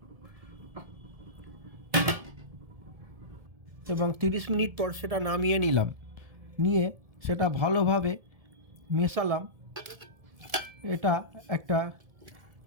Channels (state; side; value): late; left; 1.7 ms